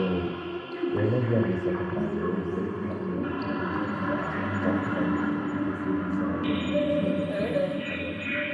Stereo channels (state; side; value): identical; both; correlation 1.00